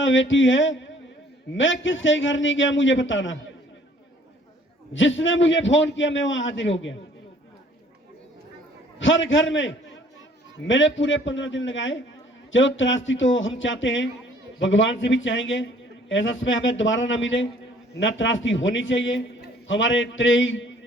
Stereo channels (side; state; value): both; normal; correlation 0.58